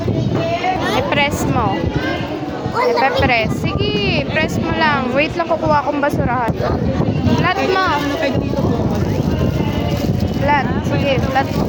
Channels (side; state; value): both; identical; correlation 1.00